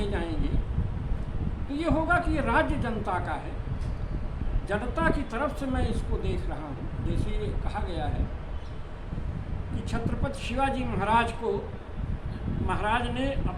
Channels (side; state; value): both; identical; correlation 1.00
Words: जाएंगे तो ये होगा कि ये राज्य जनता का है, जनता की तरफ से मैं इसको देख रहा हूँ। जैसे ये कहा गया है कि छत्रपति शिवाजी महाराज को महाराज ने